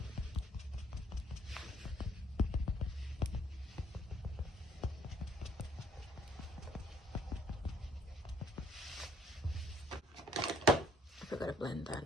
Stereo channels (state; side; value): normal; both; correlation 0.62